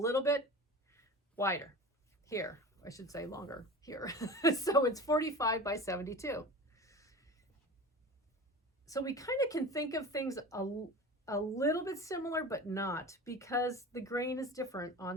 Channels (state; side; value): normal; both; correlation 0.34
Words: bit wider here. I should say longer here. So it's 45 by 72. So we kind of can think of things a little bit similar, but not, because the grain is different